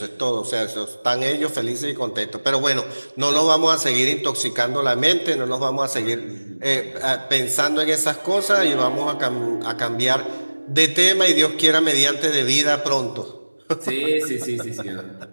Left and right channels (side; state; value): both; inverted; correlation -1.00